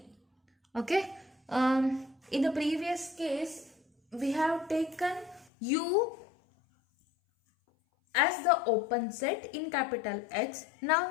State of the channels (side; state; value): right; drops out; at 5.5 s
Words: Okay. In the previous case, we have taken U as the open set in capital X. Now